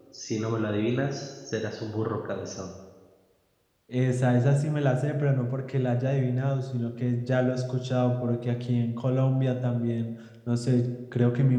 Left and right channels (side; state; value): both; identical; correlation 1.00